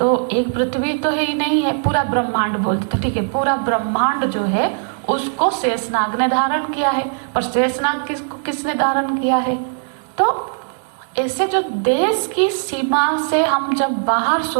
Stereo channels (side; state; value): left; silent; 66 dB below the other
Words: एक पृथ्वी तो है ही नहीं है, पूरा ब्रह्मांड बोलते, तो ठीक है, पूरा ब्रह्मांड जो है उसको शेषनाग ने धारण किया है, पर शेषनाग किसने धारण किया है? तो ऐसे जो देश की सीमा से हम जब बाहर